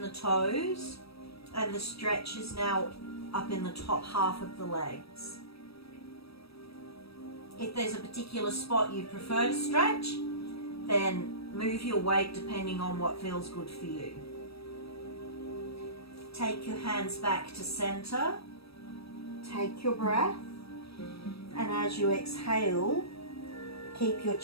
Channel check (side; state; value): right; late; 0.77 ms